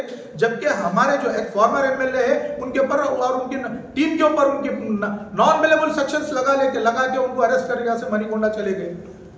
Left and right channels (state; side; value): identical; both; correlation 1.00